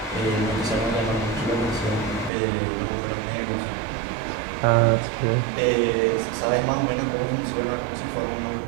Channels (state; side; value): drops out; left; at 2.3 s